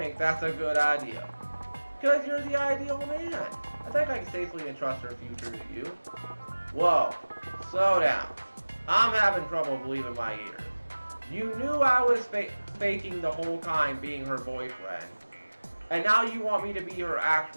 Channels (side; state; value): both; inverted; correlation -1.00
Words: that's a good idea? Because you're the ideal man. I think I can safely entrust her future to you. Whoa, slow down. I'm having trouble believing my ears. You knew I was faking the whole time being her boyfriend. And now you want me to be her